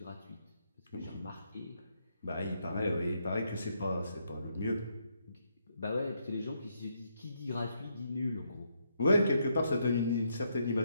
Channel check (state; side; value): inverted; both; correlation -0.77